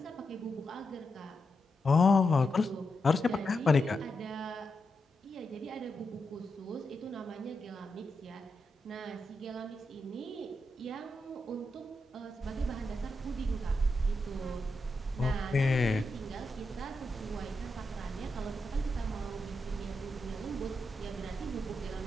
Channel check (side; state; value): both; normal; correlation 0.85